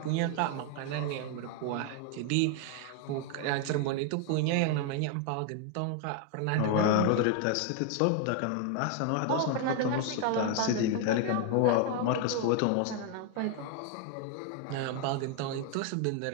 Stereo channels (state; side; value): different; both; correlation 0.00